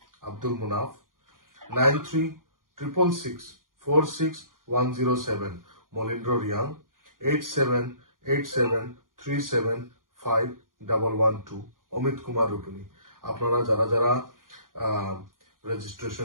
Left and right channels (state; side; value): late; left; 0.90 ms